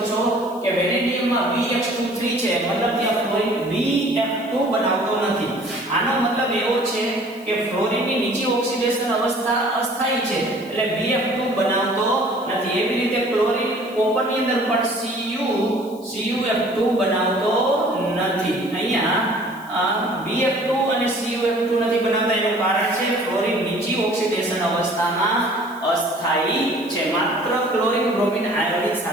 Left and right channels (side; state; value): left; noise; hiss, 24 dB below the sound